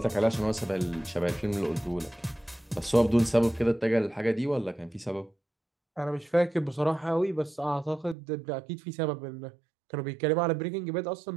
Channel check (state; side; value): drops out; left; at 8.2 s